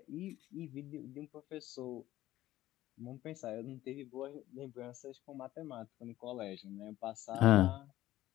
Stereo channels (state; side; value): quieter; right; 14.8 dB